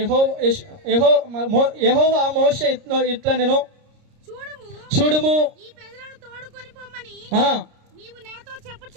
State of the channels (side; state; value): left; late; 30 ms